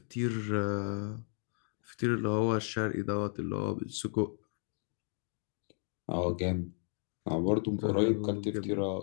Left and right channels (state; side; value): silent; right; digital silence